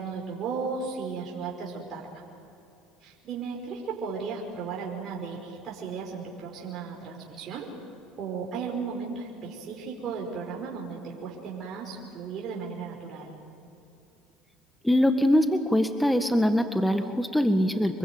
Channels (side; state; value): both; normal; correlation 0.80